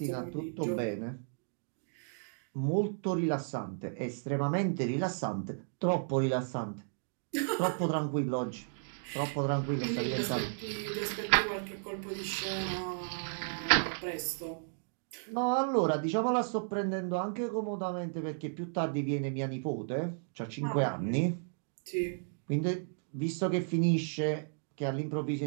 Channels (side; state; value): left; silent; digital silence